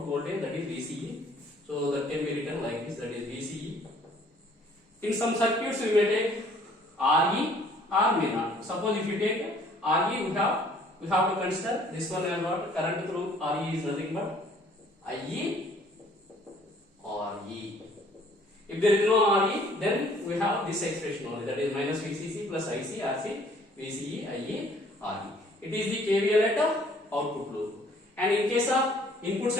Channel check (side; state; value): both; normal; correlation 0.58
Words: voltage, that is VCE. So that can be written like this, that is VCE. In some circuits, we may take RE or may not. Suppose if you take RE, we have to consider this one as what? Current through RE is nothing but IE or E. If there is no RE, then we have this expression only, that is minus VCC plus IC, RC, VCE, IE, RE. It is the KVL at the output loop. And in case of input